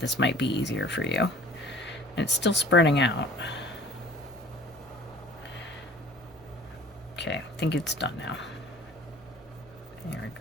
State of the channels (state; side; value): noise; left; rumble, 29 dB below the sound